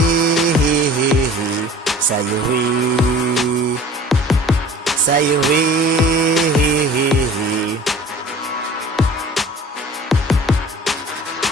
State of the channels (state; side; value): normal; both; correlation 0.44